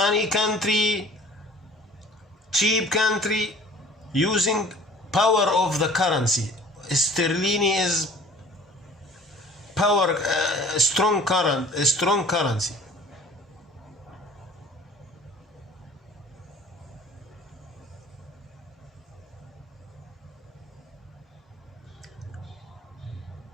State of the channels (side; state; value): both; normal; correlation 0.48